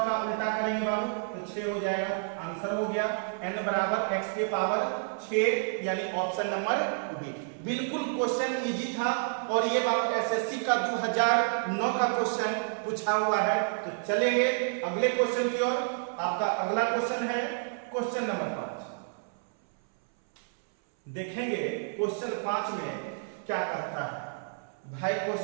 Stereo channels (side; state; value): left; silent; 58 dB below the other